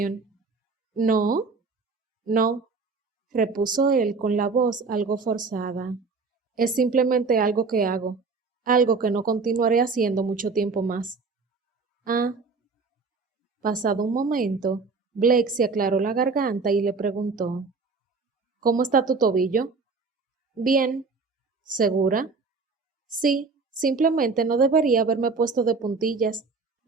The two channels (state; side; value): quieter; left; 4.4 dB